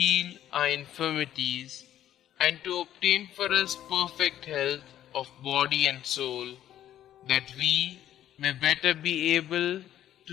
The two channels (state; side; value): quieter; right; 11.7 dB